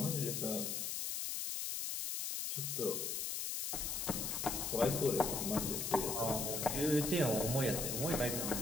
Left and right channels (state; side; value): noise; left; hiss, 2 dB below the sound